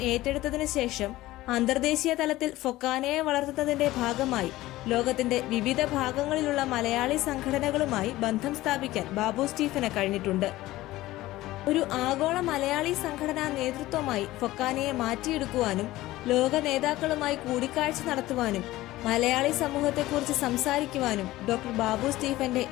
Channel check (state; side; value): quieter; right; 17.0 dB